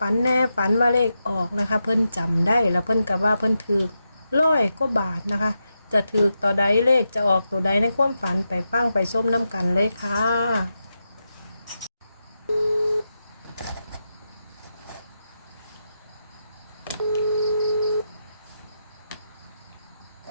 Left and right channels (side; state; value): both; inverted; correlation -0.87